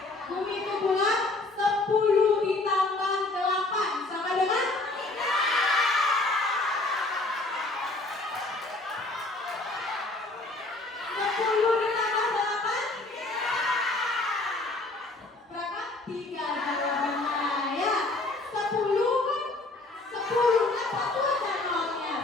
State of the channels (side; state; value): right; quieter; 3.0 dB